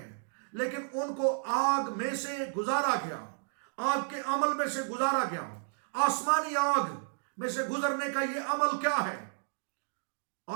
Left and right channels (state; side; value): silent; left; digital silence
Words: लेकिन उनको आग में से गुजारा गया, आग के अमल में से गुजारा गया। आसमानी आग में से गुजरने का ये अमल क्या है?